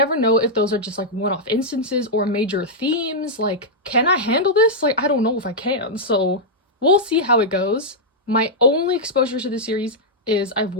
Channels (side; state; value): both; normal; correlation -0.06